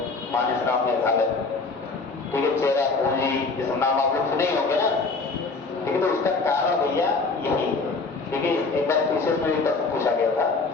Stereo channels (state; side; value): quieter; right; 4.0 dB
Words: मानसराम मेघालय, ठीक है, चेरापूंजी, जिस नाम आप लोग सुने होंगे ना, ठीक है, तो उसका कारण भैया यही है। ठीक है, एक बार विशेष में प्रश्न पूछा गया था